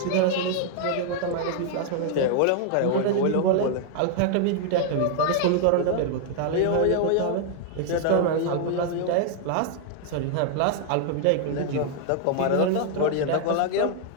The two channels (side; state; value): both; different; correlation 0.00